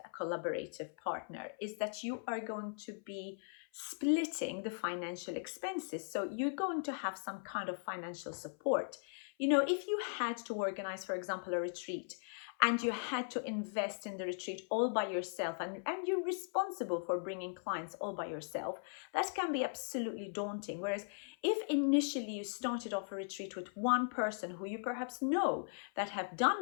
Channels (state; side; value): silent; right; 52 dB below the other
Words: a collaborative partner is that you are going to be splitting the financial expenses. So you're going to have some kind of financial support. You know, if you had to organize, for example, a retreat, and you had to invest in the retreat all by yourself, and you're responsible for bringing clients all by yourself, that can be absolutely daunting. Whereas if initially you started off a retreat with one person who you perhaps know that have